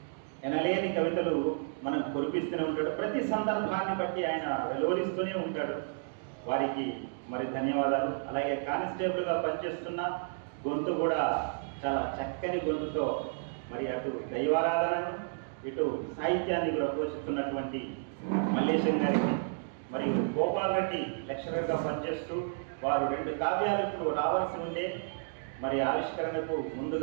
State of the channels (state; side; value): silent; left; digital silence